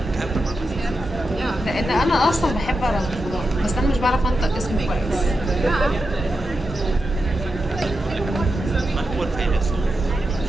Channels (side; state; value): both; normal; correlation 0.89